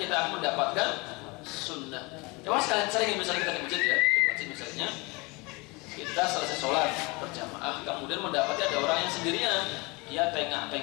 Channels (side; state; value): right; quieter; 26.4 dB